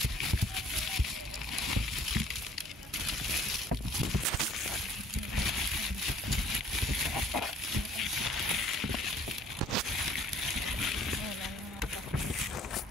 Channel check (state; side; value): normal; both; correlation 0.56